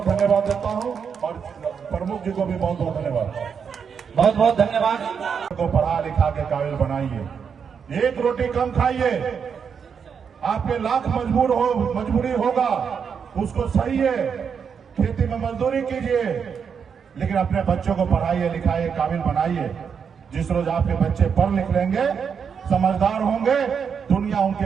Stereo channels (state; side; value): quieter; left; 6.7 dB